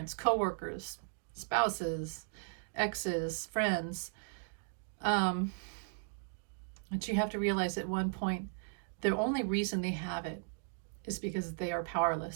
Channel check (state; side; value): silent; left; digital silence